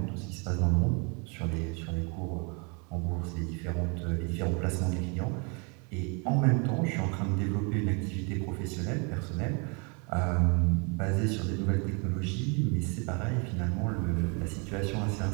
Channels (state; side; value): quieter; left; 33.4 dB